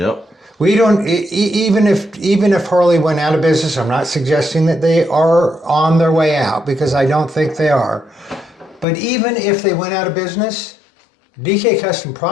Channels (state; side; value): drops out; right; at 8.8 s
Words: We don't, even if Harley went out of business, I'm not suggesting that they are on their way out because I don't think they are. But even if they went out of business, DK Custom